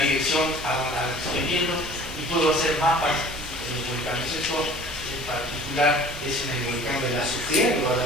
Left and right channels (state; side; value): normal; both; correlation 0.47